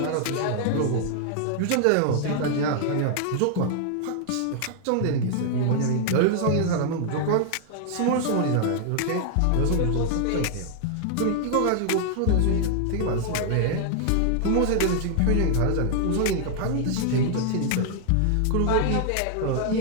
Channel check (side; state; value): both; different; correlation 0.00